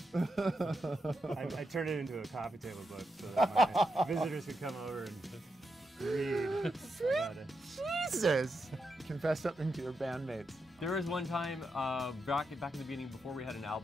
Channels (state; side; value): normal; both; correlation 0.85